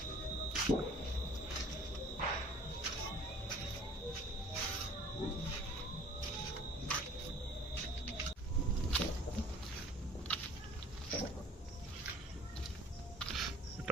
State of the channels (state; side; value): normal; both; correlation 0.50